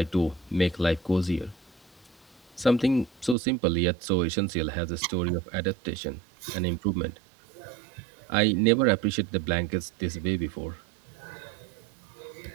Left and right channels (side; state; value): left; drops out; at 3.4 s